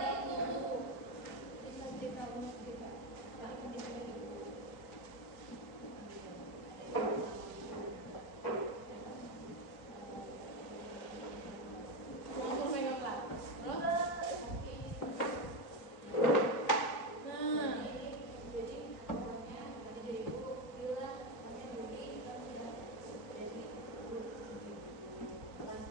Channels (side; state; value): right; late; 3.9 ms